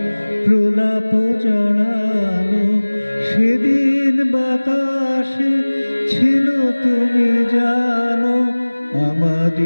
প্রলাপ জড়ানো। সেদিন বাতাসে ছিল তুমি জানো,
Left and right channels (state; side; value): inverted; both; correlation -1.00